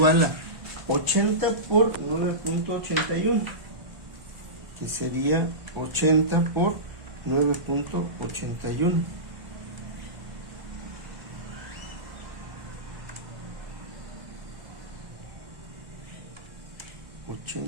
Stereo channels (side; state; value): left; late; 1.0 ms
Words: a 80 por 9.81, que sería 80 por 9.81.